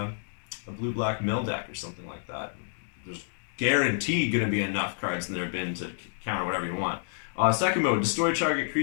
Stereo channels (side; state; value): right; silent; digital silence